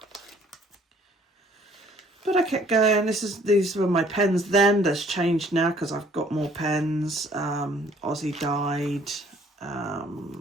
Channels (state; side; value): normal; both; correlation 0.59